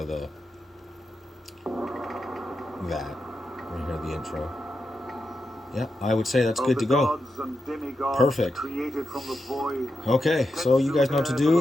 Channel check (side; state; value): both; normal; correlation 0.87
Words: the that. We hear the intro. Yeah, I would say that's good to go. Perfect. Okay, so you guys know what to